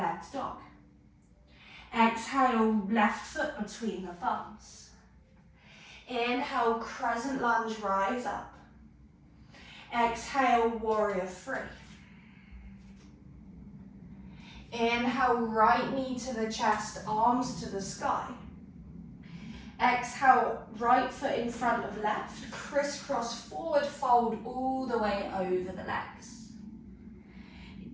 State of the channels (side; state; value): both; identical; correlation 1.00